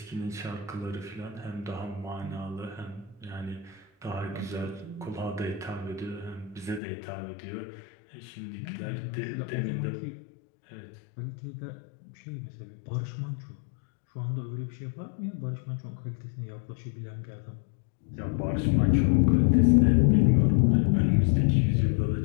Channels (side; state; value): right; drops out; at 6.8 s